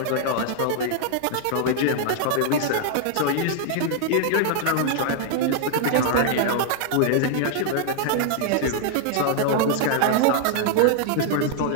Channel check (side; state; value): both; different; correlation -0.01